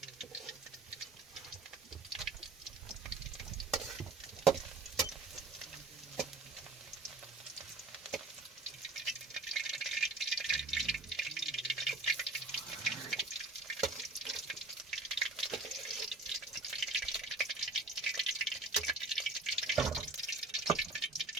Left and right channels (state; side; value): quieter; left; 3.4 dB